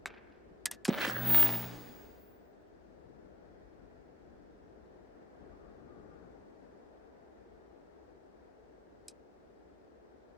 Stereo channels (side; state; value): both; normal; correlation 0.93